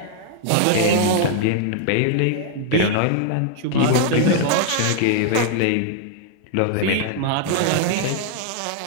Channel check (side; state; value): both; different; correlation 0.00